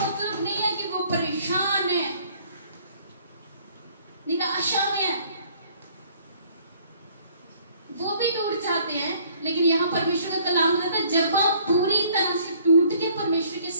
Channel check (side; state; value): both; inverted; correlation -0.59